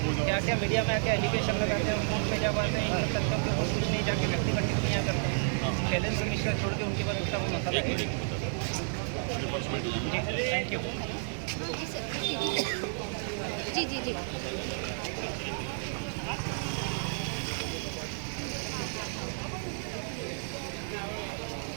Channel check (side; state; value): left; silent; digital silence